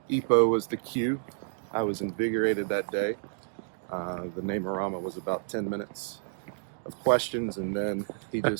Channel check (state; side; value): silent; left; digital silence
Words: EPO was the cue. I was invigorated that day. The name-orama was about 10 minutes of questions, and then he